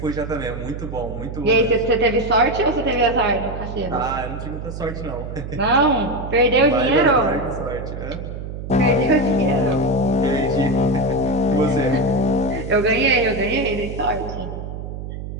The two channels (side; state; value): right; noise; hum, 8 dB below the sound